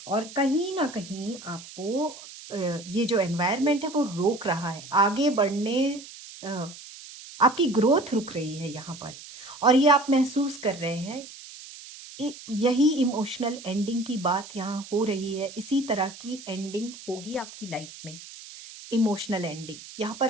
और कहीं न कहीं आपको ये जो एनवायरनमेंट है वो रोक रहा है। आगे बढ़ने अ, आपकी ग्रोथ रुक रही है यहाँ पर और ये आप महसूस कर रहे हैं। यही इमोशनल एंडिंग की बात यहाँ हो रही है। इसी तरह की एंडिंग होगी आपकी लाइफ में। Emotional ending. यहाँ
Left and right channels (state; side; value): noise; right; hiss, 16 dB below the sound